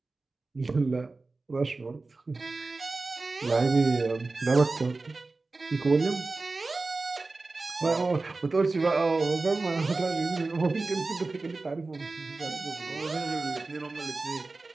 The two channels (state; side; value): quieter; left; 3.6 dB